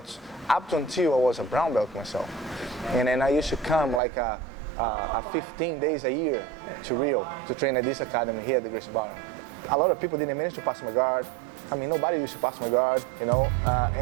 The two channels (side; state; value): left; drops out; at 4.0 s